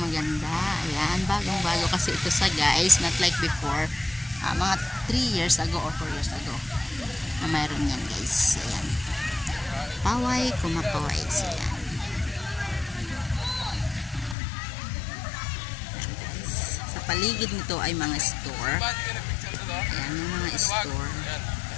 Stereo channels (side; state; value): right; drops out; at 14.4 s